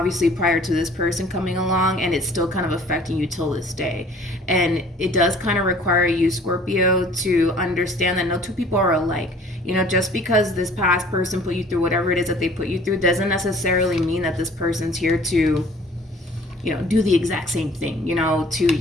prior to this person coming along, and it's still kind of affecting you till this day. And it does kind of require you, Scorpio, to understand that no two people are alike. You know, just because this past person put you through whatever it is that they put you through doesn't necessarily mean that this person's here to, you know, do the exact same thing, you know, to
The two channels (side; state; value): both; normal; correlation 0.52